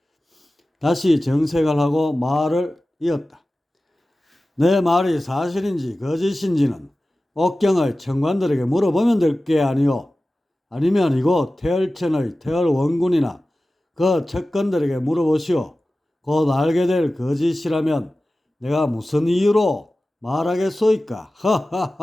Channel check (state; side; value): normal; both; correlation 0.96